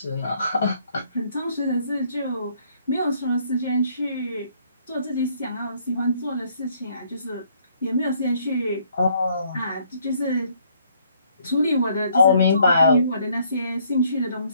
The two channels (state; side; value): inverted; both; correlation -0.66